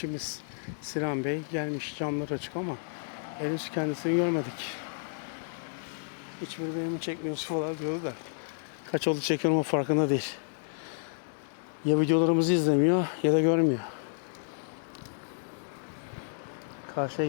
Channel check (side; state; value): right; silent; digital silence